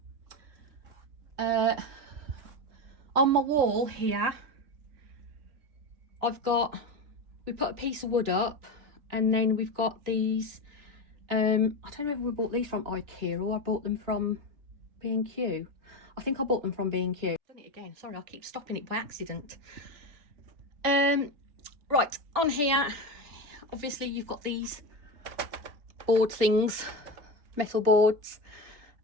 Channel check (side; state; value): left; late; 3.3 ms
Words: On my wall here we put a piece of wood up, and then we've got these I don't know if we bought these from IKEA or I bought them from B&Q. I think I bought them from B&Q. Done it again, sorry, I keep stopping it by accident. Right, on here obviously you've got these board things, metal boards,